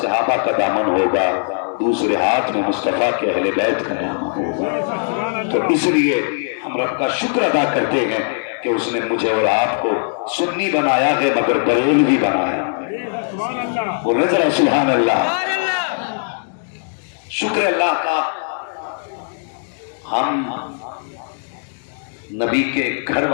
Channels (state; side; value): silent; right; digital silence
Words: صحابہ کا دامن ہوگا، دوسرے ہاتھ میں مصطفیٰ کے اہل بیت کا دامن ہوگا۔ تو اس لیے ہم رب کا شکر ادا کرتے ہیں کہ اس نے مجھے اور آپ کو سنی بنایا ہے مگر بریلوی بنایا ہے۔ بولے ذرا سبحان اللہ۔ شکر اللہ کا ہم نبی کے گھر